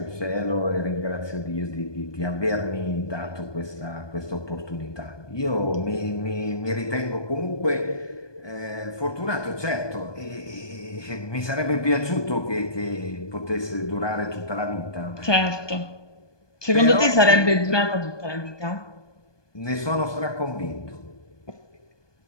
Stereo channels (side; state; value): right; late; 1.2 ms